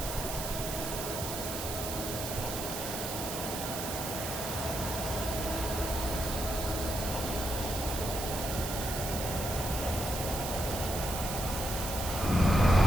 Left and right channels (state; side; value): noise; right; hiss, 5 dB below the sound